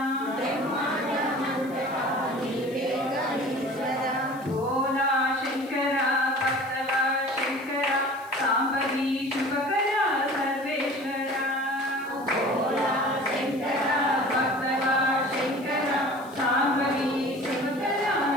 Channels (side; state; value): left; noise; hiss, 24 dB below the sound